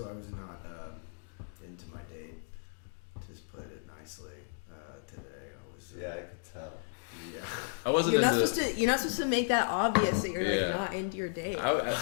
I was not into my date. Just put it nicely. Today, I was. Yeah, I could tell. Yeah. I wasn't You're not into. supposed to. You're not supposed to make that obvious that you're Yeah. like, not into your date. The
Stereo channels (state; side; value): silent; right; digital silence